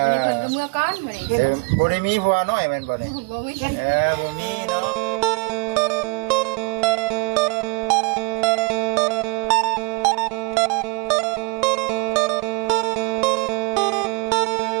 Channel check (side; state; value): left; quieter; 31.3 dB